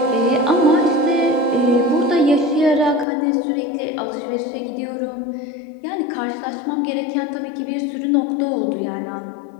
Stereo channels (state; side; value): drops out; right; at 3.1 s